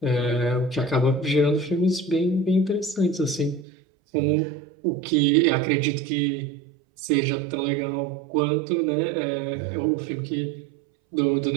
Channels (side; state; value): left; drops out; at 3.7 s